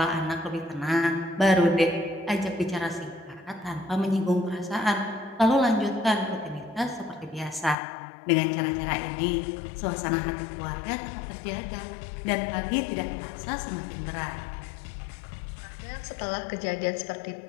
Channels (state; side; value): drops out; right; at 7.8 s